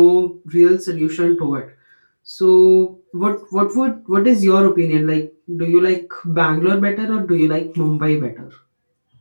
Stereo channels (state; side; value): inverted; both; correlation -1.00